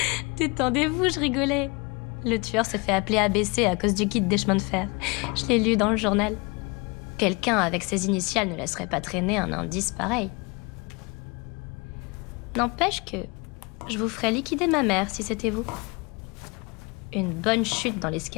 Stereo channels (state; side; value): quieter; right; 28.3 dB